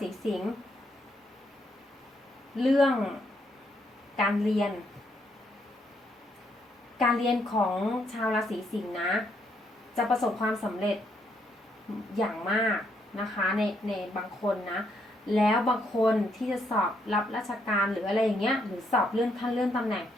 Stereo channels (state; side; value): normal; both; correlation 0.74